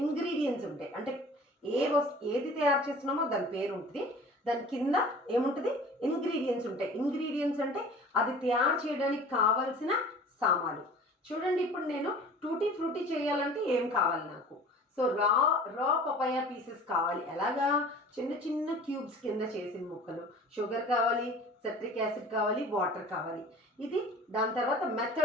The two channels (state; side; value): normal; both; correlation 0.43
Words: ఇంగ్రీడియంట్స్ ఉంటాయి. అంటే ఏది తయారు చేస్తున్నామో దాని పేరు ఉంటుంది. దాని కింద ఏముంటుంది? ఇంగ్రీడియంట్స్ ఉంటాయి. ఇంగ్రీడియంట్స్ అంటే అది తయారు చేయడానికి కావాల్సిన సామాన్లు. చూడండి, ఇప్పుడు నేను టూటీ ఫ్రూటీ చేయాలంటే ఏం కావాలి నాకు? సో రా పపాయ పీసెస్ కావాలి. ఎలాగా? చిన్న చిన్న క్యూబ్స్ కింద చేసిన ముక్కలు. షుగర్ కావాలి, సిట్రిక్ యాసిడ్ కావాలి, వాటర్ కావాలి. ఇది దాని తర్వాత